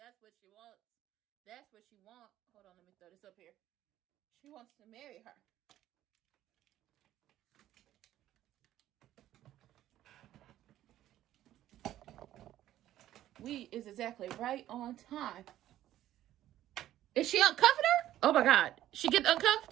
what she wants. That's what she wants. Hold on, let me throw this up here. She wants to marry her. We is exactly right on time. Is she uncuffing her? Oh my God. She get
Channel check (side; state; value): left; quieter; 13.1 dB